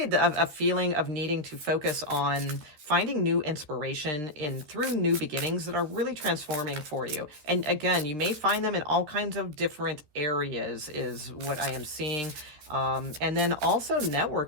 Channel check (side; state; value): left; late; 13 ms